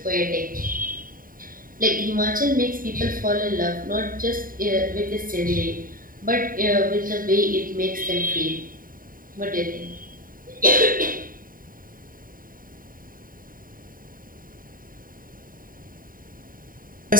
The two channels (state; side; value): late; left; 0.41 ms